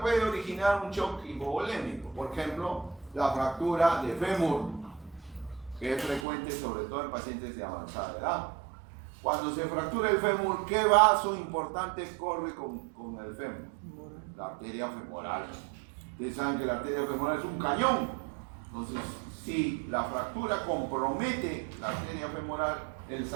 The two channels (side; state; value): left; drops out; at 6.2 s